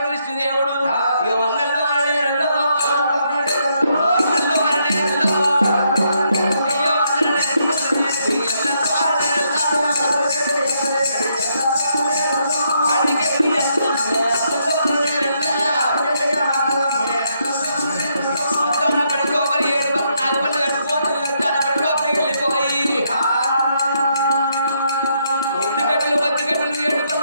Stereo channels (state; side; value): inverted; both; correlation -0.76